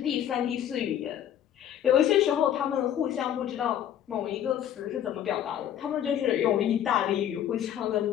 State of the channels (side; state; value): right; quieter; 10.5 dB